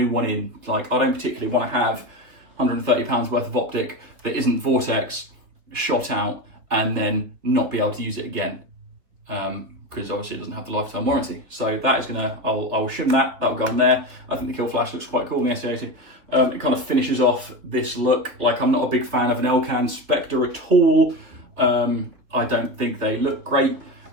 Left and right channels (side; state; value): left; late; 3.5 ms